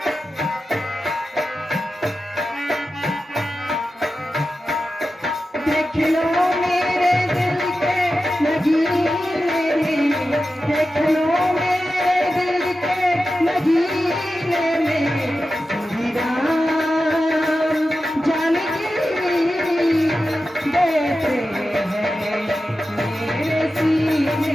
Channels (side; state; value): both; normal; correlation 0.92